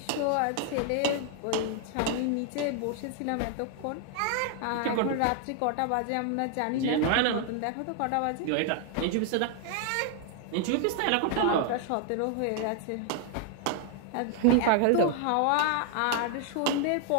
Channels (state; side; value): different; both; correlation 0.00